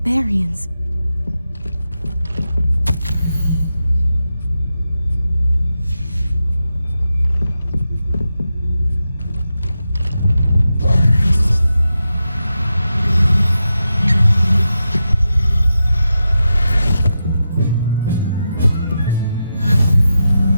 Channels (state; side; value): inverted; both; correlation -0.88